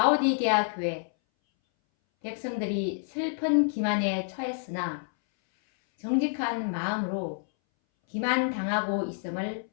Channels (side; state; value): right; silent; 59 dB below the other